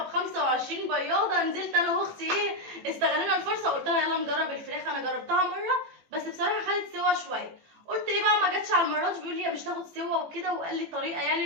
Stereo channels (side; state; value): left; late; 18 ms